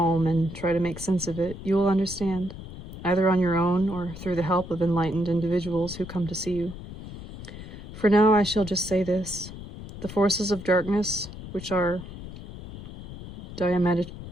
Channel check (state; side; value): noise; left; rumble, 12 dB below the sound